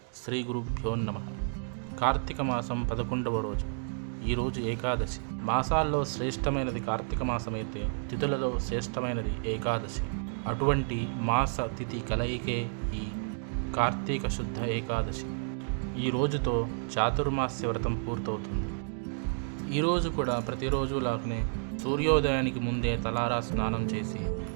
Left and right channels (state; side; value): silent; left; digital silence